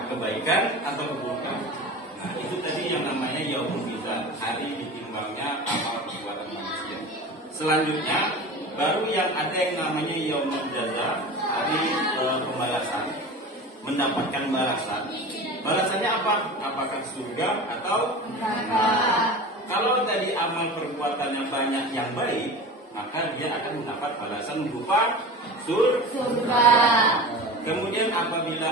kebaikan atau keburukan? Nah, itu tadi yang namanya yaumul mizan, hari ditimbangnya amal perbuatan manusia. Selanjutnya, baru yang ada yang namanya yaumul jaza, hari pembalasan, mendapatkan balasan. Balasannya apa? Apakah surga atau neraka? Kalau tadi amal perbuatannya banyak yang baik, maka dia akan mendapat balasan berupa surga. Kemudian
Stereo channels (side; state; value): both; normal; correlation 0.33